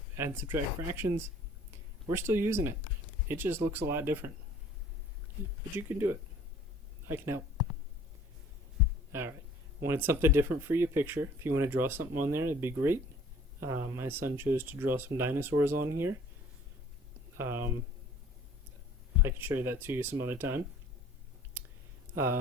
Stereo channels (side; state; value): both; normal; correlation 0.52